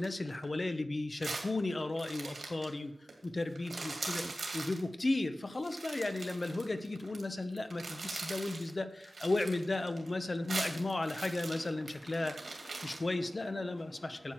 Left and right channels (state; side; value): normal; both; correlation 0.96